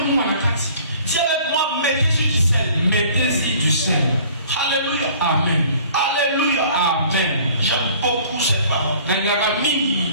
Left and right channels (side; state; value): both; inverted; correlation -0.51